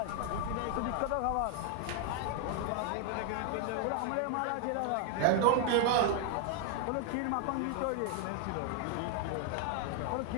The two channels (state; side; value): different; both; correlation 0.00